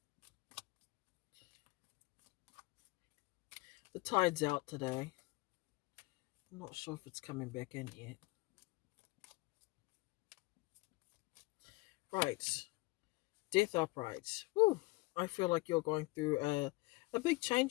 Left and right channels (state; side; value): quieter; right; 23.1 dB